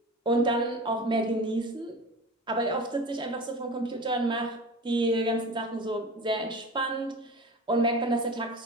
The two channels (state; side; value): normal; both; correlation 0.33